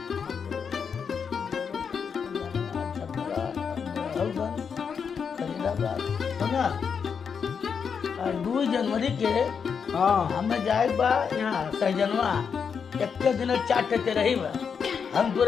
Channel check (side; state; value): right; quieter; 6.5 dB